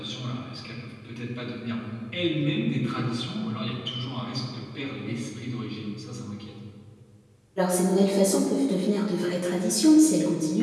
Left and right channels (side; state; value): both; identical; correlation 1.00